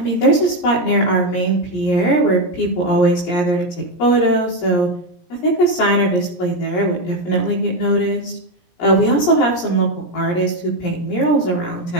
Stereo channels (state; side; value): late; right; 17 ms